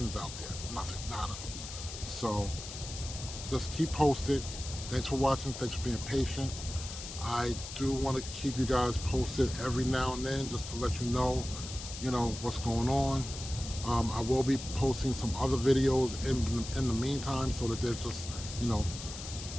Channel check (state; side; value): noise; left; hiss, 10 dB below the sound